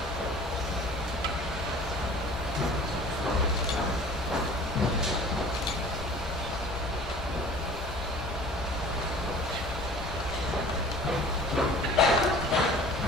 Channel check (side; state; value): both; normal; correlation 0.45